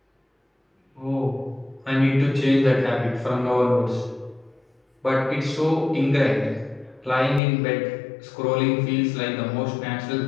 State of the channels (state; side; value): drops out; right; at 7.4 s